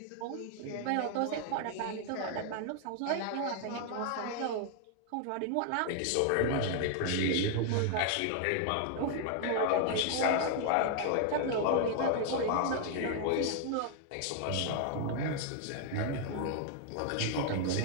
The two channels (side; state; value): both; different; correlation 0.00